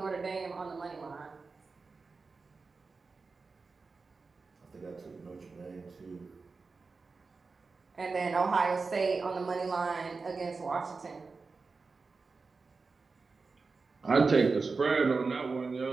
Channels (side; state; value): left; quieter; 4.3 dB